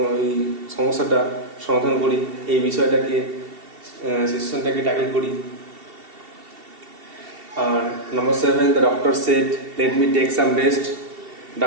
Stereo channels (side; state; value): left; late; 2.7 ms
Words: সমস্যাটা সমাধান করি, এই বিষয়টাকে সিচুয়েশনটাকে ট্যাকল করি। আর number 7, the doctor said, let me take some rest.